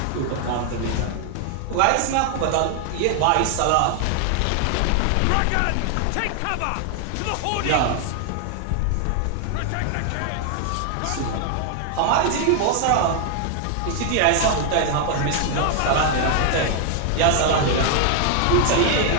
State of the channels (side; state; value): both; different; correlation 0.00